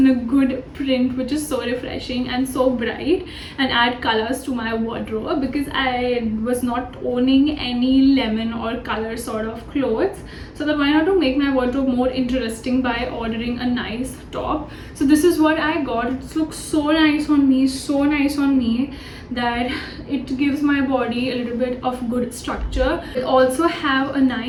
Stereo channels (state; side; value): identical; both; correlation 1.00